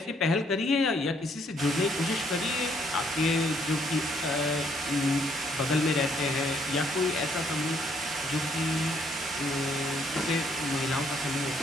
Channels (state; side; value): normal; both; correlation 0.68